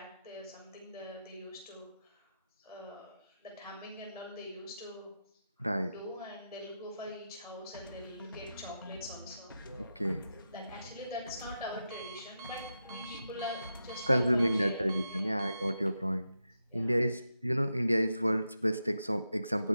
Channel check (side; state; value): both; inverted; correlation -0.88